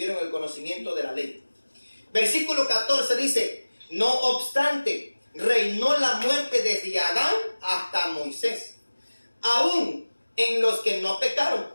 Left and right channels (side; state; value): both; inverted; correlation -1.00